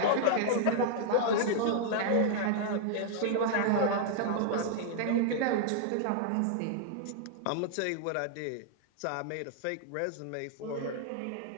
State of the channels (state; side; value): different; both; correlation -0.01